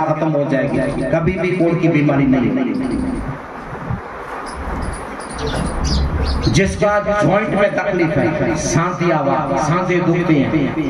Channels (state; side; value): identical; both; correlation 1.00